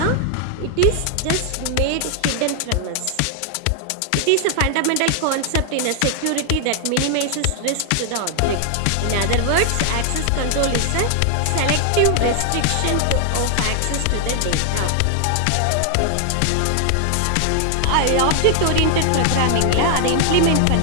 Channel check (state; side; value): different; both; correlation 0.00